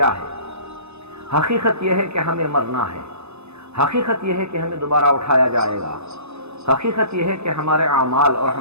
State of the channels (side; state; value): left; late; 0.80 ms